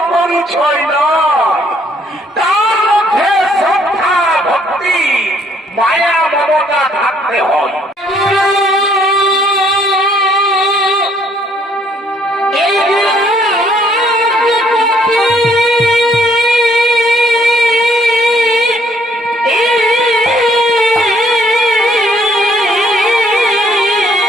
পরিচয় নয়, তার মধ্যে শ্রদ্ধা ভক্তি মায়া মমতা থাকতে হয়।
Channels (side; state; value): both; normal; correlation 0.65